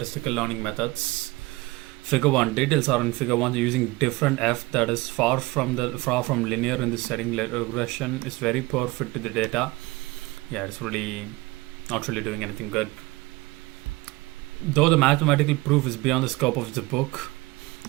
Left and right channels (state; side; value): quieter; left; 22.0 dB